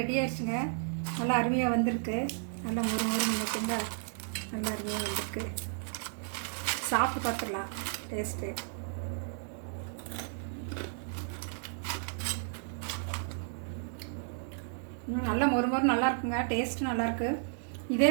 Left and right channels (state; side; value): silent; left; digital silence